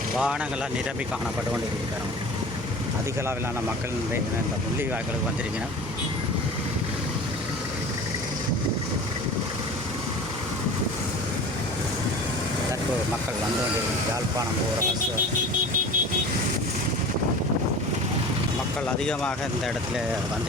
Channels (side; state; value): both; normal; correlation 0.38